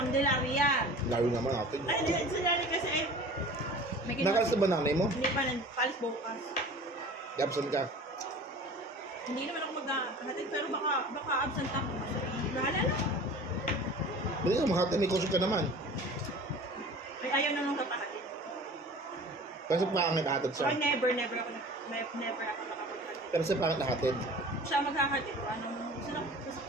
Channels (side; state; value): both; normal; correlation 0.42